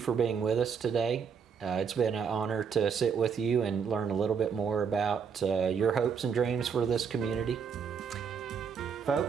being with us today. It's been an honor to sit with you and learn a little bit more about your hopes and dreams for this community.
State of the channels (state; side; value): quieter; left; 6.5 dB